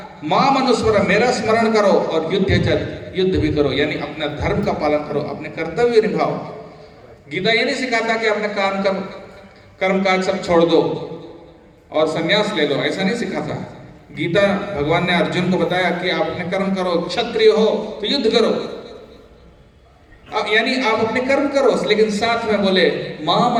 माम अनुस्मर, मेरा स्मरण करो, और युद्ध भी करो, यानी अपना धर्म का पालन करो, अपने कर्तव्य निभाओ। गीता ये नहीं सिखाता कि अपने कर्म काज सब छोड़ दो और संन्यास ले लो, ऐसा नहीं सिखाता। गीता भगवान ने अर्जुन को बताया कि आप अपने कर्म करो, क्षत्रिय हो तो युद्ध करो, यानी आप अपने कर्म करो, लेकिन साथ में बोले माम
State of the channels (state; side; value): identical; both; correlation 1.00